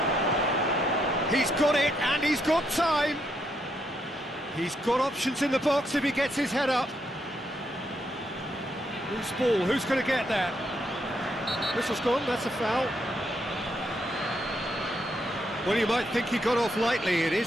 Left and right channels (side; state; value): both; normal; correlation 0.77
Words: He's got it, and he's got time. He's got options in the box if he gets his head up. Loose ball, who's going to get that? Whistle's gone, that's a foul. Well, you might think he got off lightly, it